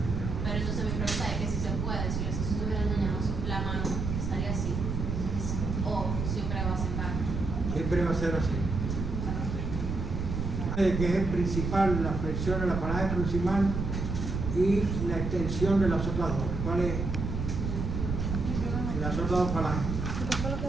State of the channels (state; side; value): noise; right; rumble, 3 dB below the sound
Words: Pero entonces mi pregunta es que si se puede, si los dedos estuvieran dañados, la mano estaría así. O siempre va a sentar. Siempre va a ser así. Que es el principal, la flexión de la falange proximal y la extensión de las otras dos. ¿Cuál es? Las otras dos falanges.